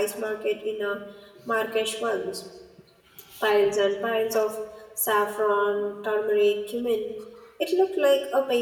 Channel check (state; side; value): identical; both; correlation 1.00